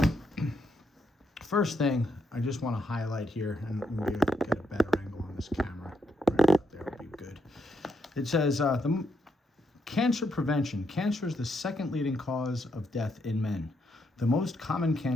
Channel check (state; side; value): normal; both; correlation 0.78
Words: first thing I just want to highlight here, and maybe get a better angle on this camera. Right up there will be good. It says, cancer prevention. Cancer is the second leading cause of death in men. The most common